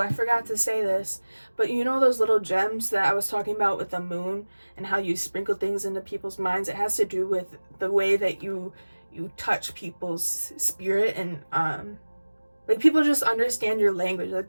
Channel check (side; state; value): both; inverted; correlation -1.00